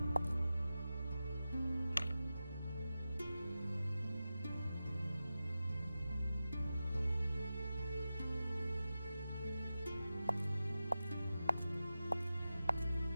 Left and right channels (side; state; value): both; inverted; correlation -0.93